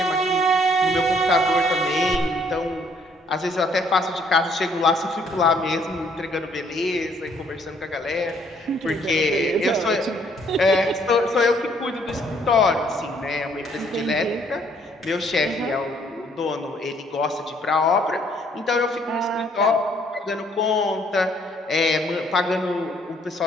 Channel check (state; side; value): normal; both; correlation 0.65